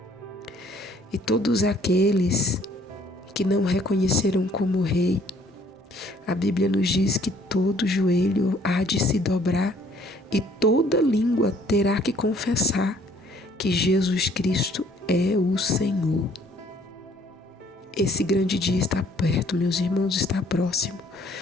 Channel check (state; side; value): normal; both; correlation 0.60